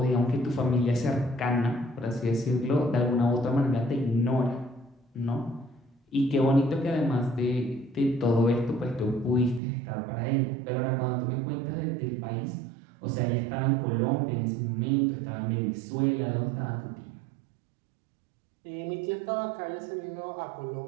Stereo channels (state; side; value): drops out; left; at 9.6 s